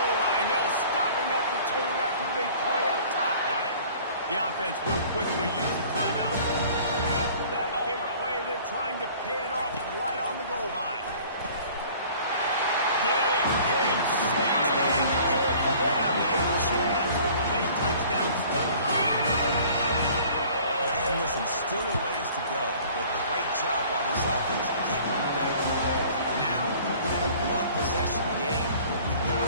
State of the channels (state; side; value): inverted; both; correlation -0.50